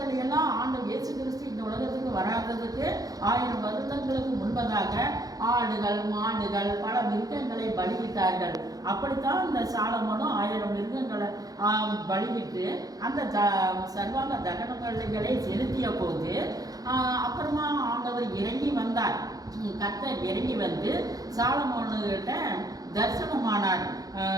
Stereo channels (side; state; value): left; late; 0.18 ms